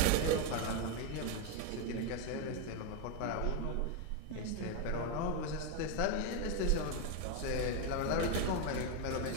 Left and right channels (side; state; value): both; different; correlation 0.02